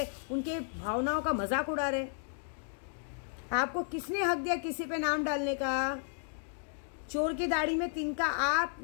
उनके भावनाओं का मजाक उड़ा रहे। आपको किसने हक दिया किसी पे नाम डालने का? चोर की दाढ़ी में तिनका। आप,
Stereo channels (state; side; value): silent; right; digital silence